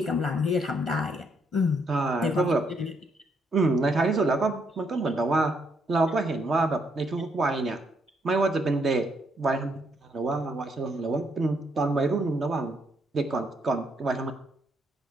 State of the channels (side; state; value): both; normal; correlation 0.74